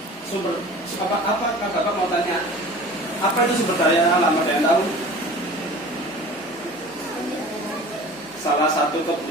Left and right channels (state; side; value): noise; left; hum, 29 dB below the sound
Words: apa Bapak mau tanya, apa itu sumber daya alam? Ada yang tahu? Salah satu